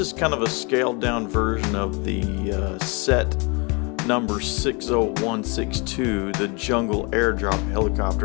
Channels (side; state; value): right; quieter; 31.0 dB